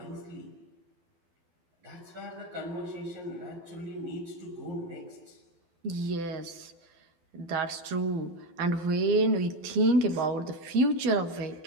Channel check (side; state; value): left; late; 12 ms